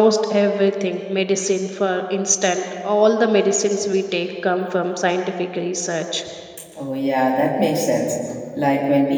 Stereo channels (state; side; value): identical; both; correlation 1.00